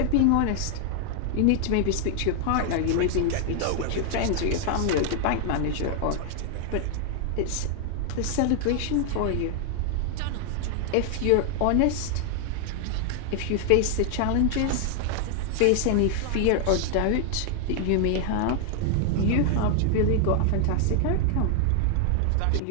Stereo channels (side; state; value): both; different; correlation 0.00